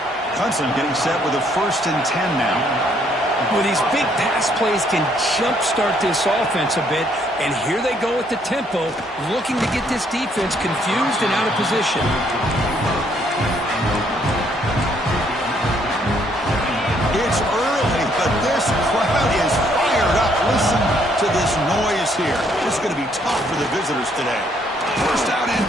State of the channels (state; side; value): normal; both; correlation 0.68